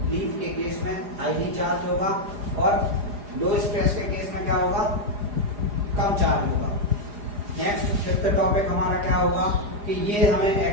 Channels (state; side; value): late; left; 4.9 ms